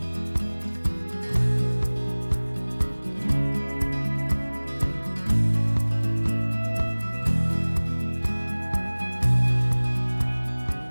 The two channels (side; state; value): both; inverted; correlation -1.00